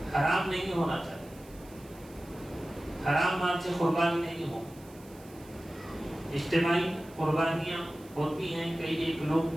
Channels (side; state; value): right; noise; hiss, 24 dB below the sound